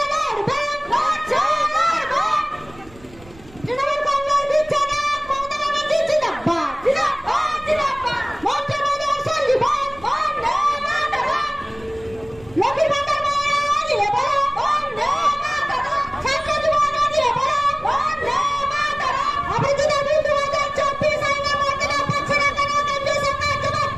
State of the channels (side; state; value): right; noise; rumble, 23 dB below the sound